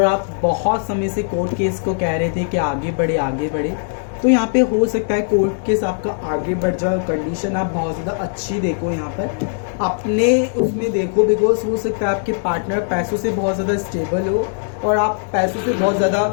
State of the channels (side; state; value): right; silent; digital silence